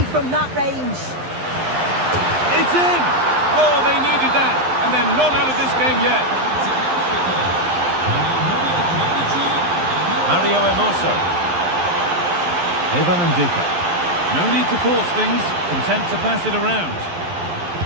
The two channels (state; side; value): late; left; 11 ms